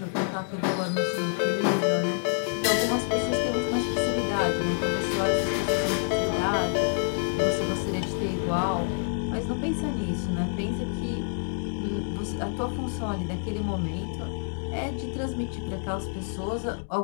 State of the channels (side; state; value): right; silent; digital silence